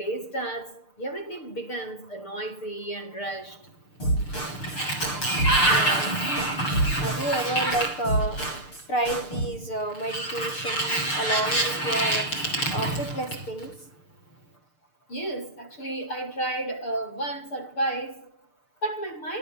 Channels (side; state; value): right; late; 6.7 ms